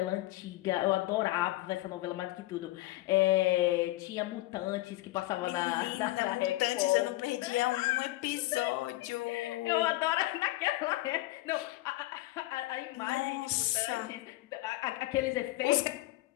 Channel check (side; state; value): right; quieter; 18.3 dB